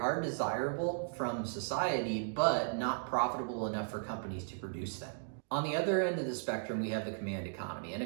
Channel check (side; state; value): left; silent; digital silence